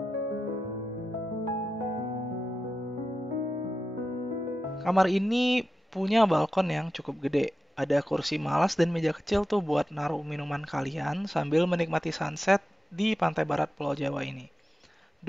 Kamar ini punya balkon yang cukup gede. Ada kursi malas dan meja kecil tuh buat naruh minuman kalian sambil menikmati sunset di pantai barat Pulau Jawa ini.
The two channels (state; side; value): normal; both; correlation 0.92